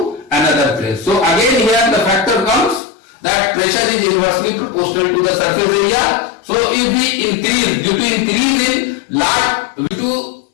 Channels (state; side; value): drops out; right; at 2.8 s